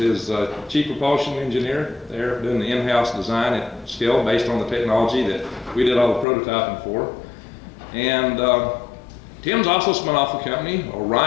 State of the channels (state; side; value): drops out; right; at 6.2 s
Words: chief propulsion engineer there, doing the in-house design at scale based on the technology that we did all the prototyping for. And Tim's also spun off a company,